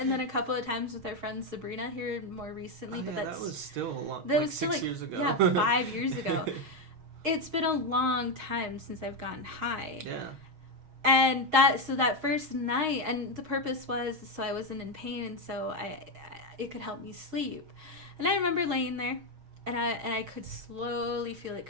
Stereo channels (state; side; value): late; left; 6.4 ms